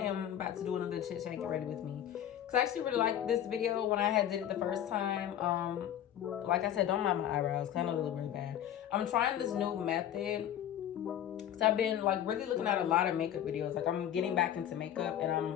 about to do another chit chat. Get ready with me, because I actually really liked this video when I did it the first time. Like I said, don't mind my eyebrows because I know they look really bad. I'm trying this new method because I've been like really looking at a lot of makeup videos. Like I'm getting back into makeup and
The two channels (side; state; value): right; quieter; 10.8 dB